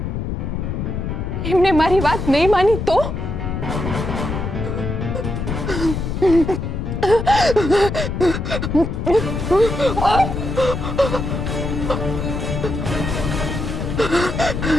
એમને મારી વાત નહીં માની તો?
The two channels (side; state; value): left; noise; rumble, 3 dB below the sound